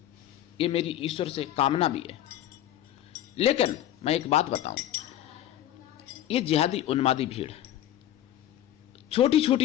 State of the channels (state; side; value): quieter; right; 12.3 dB